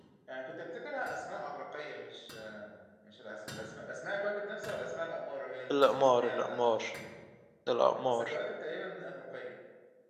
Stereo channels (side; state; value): both; identical; correlation 1.00